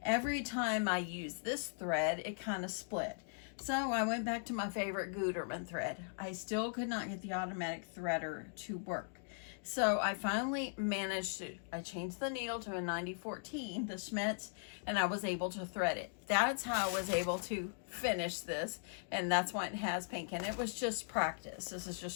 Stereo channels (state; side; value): silent; right; digital silence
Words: every time I used this thread, it kind of split. So I went back to my favorite Gutermann thread. I still could not get the automatic threader to work. So I finally managed to, I changed the needle to a 9014, the Schmitz, and I was able to thread it. That's how I was able to finish this, and that's why it has pink. And it was just practice. This is just